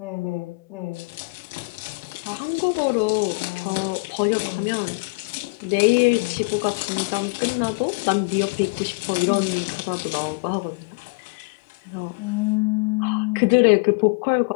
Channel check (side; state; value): right; quieter; 30.6 dB